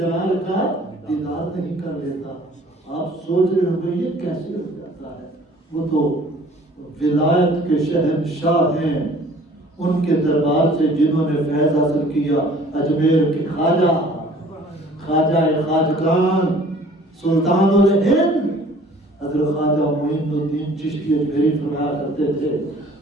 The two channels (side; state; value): both; normal; correlation 0.52